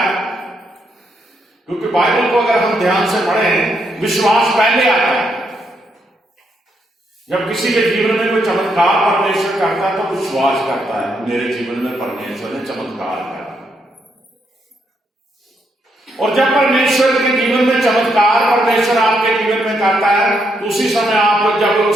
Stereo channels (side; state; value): both; normal; correlation 0.78